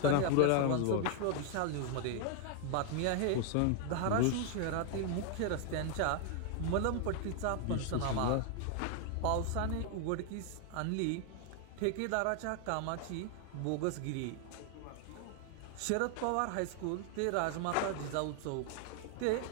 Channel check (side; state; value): both; different; correlation 0.00